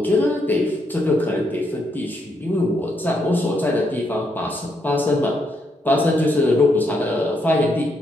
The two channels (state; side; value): normal; both; correlation 0.77